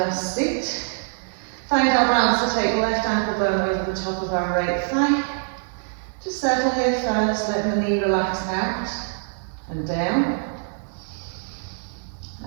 seat. Find our balance to take left ankle bone over the top of our right thigh. Just settle here first, let the knee relax out and down.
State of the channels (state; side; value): silent; left; digital silence